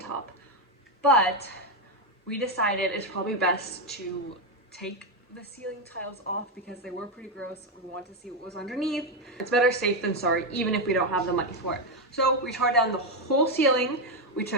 But we decided it's probably best to take the ceiling tiles off because they were pretty gross. We want to see what was underneath. It's better safe than sorry, even if we don't have the money for it. So we tore down the whole ceiling. We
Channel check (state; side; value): normal; both; correlation 0.06